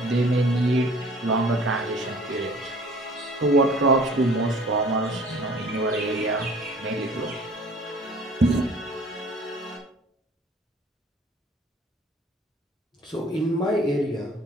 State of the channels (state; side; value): normal; both; correlation 0.50